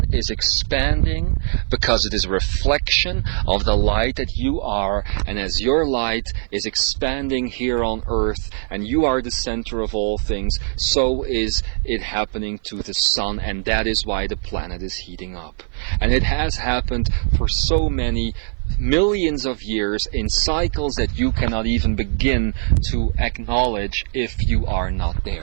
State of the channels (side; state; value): left; silent; 56 dB below the other